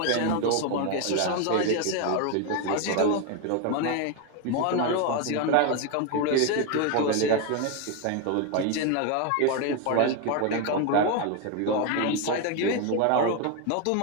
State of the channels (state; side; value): different; both; correlation 0.02